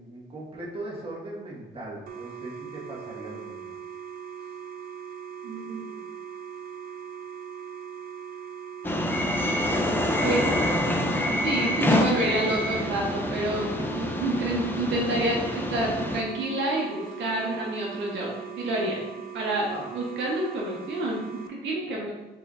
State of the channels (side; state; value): both; normal; correlation 0.50